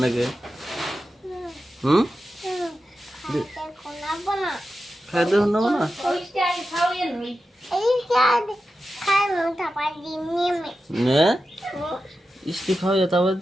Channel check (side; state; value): both; normal; correlation 0.91